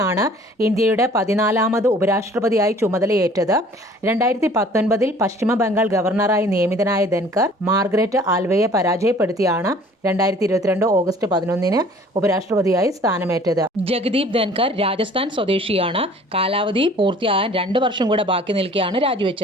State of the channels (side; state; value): both; normal; correlation 0.51